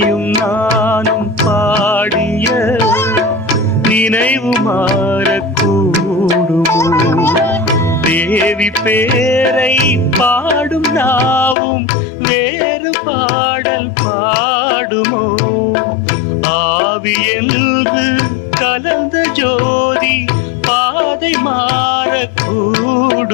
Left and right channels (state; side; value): drops out; right; at 11.6 s